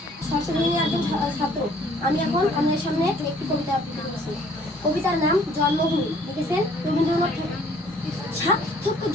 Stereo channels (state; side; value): normal; both; correlation 0.58